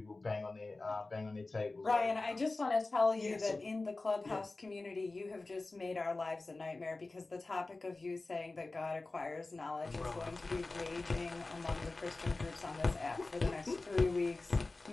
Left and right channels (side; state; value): right; quieter; 3.3 dB